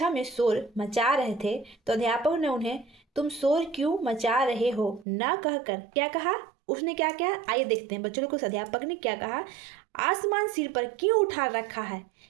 में शोर मचा रहे थे तो अध्यापक ने उन्हें तुम शोर क्यों मचा रहे हो ना कहकर क्या कहा? उसने क्या कहा? आइए देखते हैं बच्चों को उस अध्यापक ने क्या कहा। आसमान सिर पर क्यों उठा रखा है?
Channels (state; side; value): drops out; left; at 5.1 s